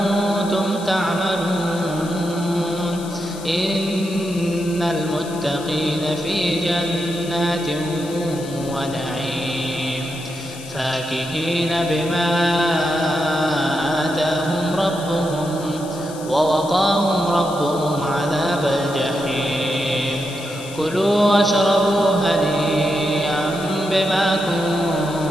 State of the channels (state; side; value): noise; left; hiss, 16 dB below the sound